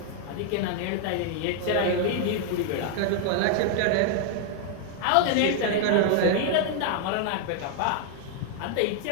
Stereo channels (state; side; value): different; both; correlation 0.00